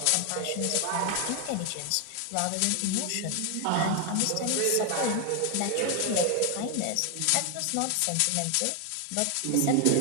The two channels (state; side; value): different; both; correlation 0.00